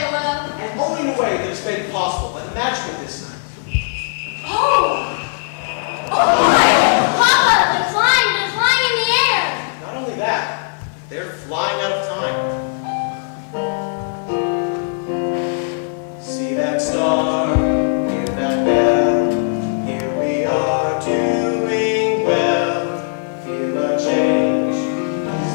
will. And only in a way that is made possible by the magic of this night. Oh! Oh,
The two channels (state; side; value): silent; right; digital silence